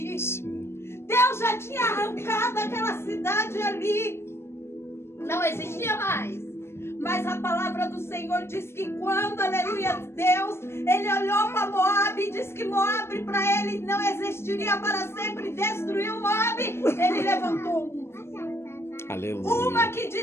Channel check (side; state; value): right; late; 0.12 ms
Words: Sim. Deus já tinha arrancado aquela cidade ali. Não existia mais. Mas a palavra do Senhor diz que quando, aleluia, Deus, ele olhou para Moabe e disse que Moabe para ele não existiria para sempre, destruiu Moabe, ele levantou uma. Aleluia. Uma que